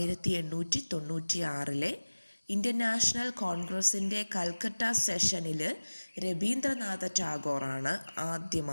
ഇന്ത്യൻ നാഷണൽ കോൺഗ്രസിൻ്റെ കൽക്കട്ട സെഷനിൽ രവീന്ദ്രനാഥ ടാഗോറാണ്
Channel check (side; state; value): both; inverted; correlation -1.00